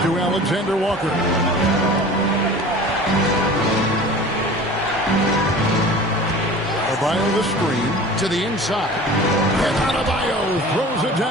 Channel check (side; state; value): both; normal; correlation 0.40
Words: to Alexander Walker. Adebayo the screen to the inside. And Adebayo throws it